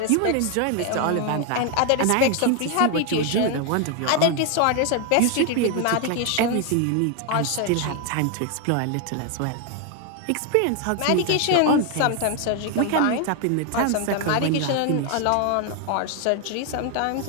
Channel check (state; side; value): different; both; correlation 0.01